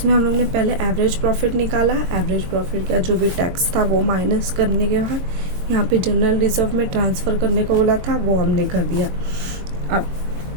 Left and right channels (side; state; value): left; late; 22 ms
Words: हम लोग ने पहले एवरेज प्रॉफिट निकाला, एवरेज प्रॉफिट का जो भी टैक्स था वो माइनस करने के बाद यहाँ पे जनरल रिजर्व में ट्रांसफ़र करने को बोला था, वो हमने कर दिया। अब